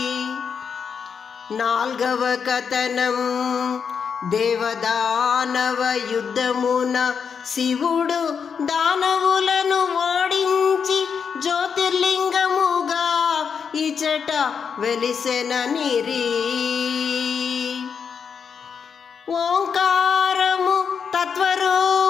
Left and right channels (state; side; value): quieter; right; 6.5 dB